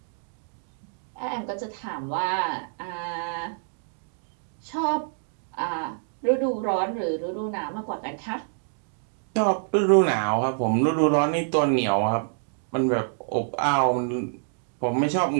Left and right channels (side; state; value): left; silent; digital silence